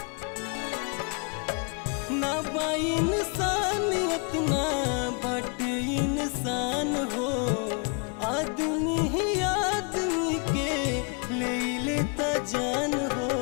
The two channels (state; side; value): quieter; right; 35.7 dB